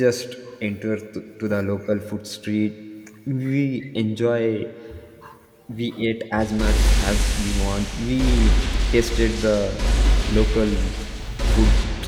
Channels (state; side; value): identical; both; correlation 1.00